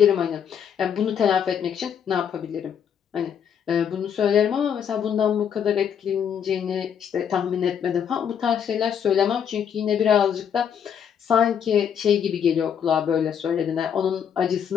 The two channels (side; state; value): right; quieter; 8.2 dB